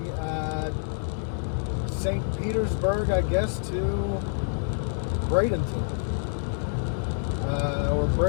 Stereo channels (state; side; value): silent; right; digital silence